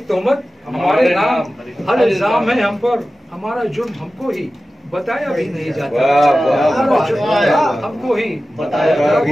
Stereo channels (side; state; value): both; normal; correlation 0.95